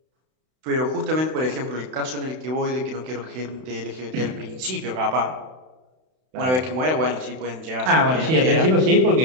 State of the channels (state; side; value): late; left; 31 ms